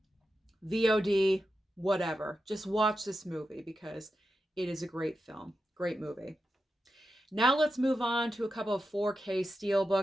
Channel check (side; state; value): both; normal; correlation 0.89